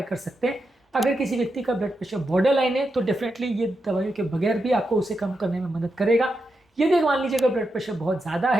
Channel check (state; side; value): normal; both; correlation 0.86